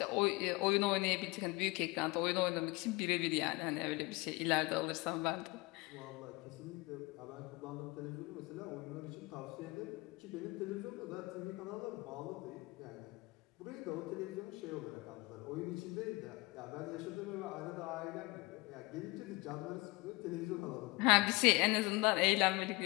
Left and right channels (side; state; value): right; quieter; 23.7 dB